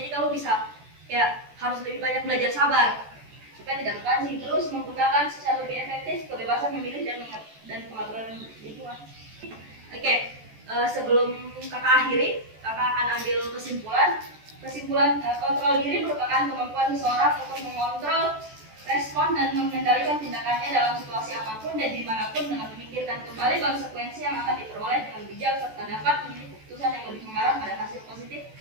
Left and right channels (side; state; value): left; late; 14 ms